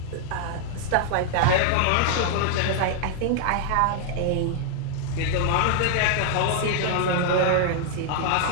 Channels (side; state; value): both; different; correlation 0.00